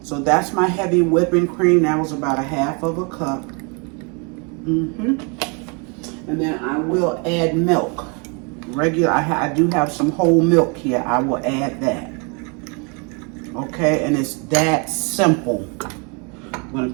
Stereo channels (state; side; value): quieter; left; 34.0 dB